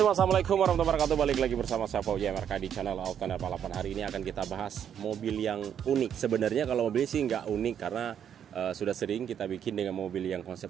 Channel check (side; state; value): left; quieter; 8.9 dB